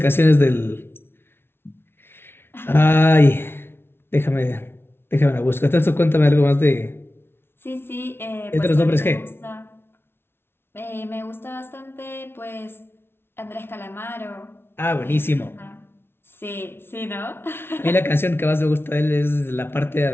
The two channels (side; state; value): right; late; 0.11 ms